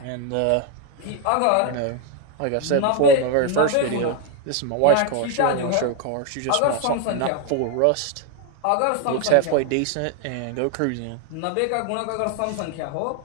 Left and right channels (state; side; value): different; both; correlation 0.01